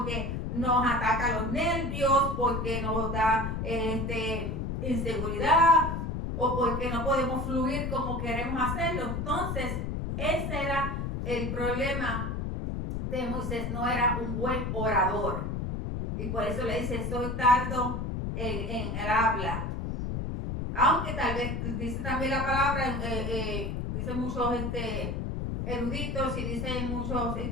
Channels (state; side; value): noise; left; rumble, 3 dB below the sound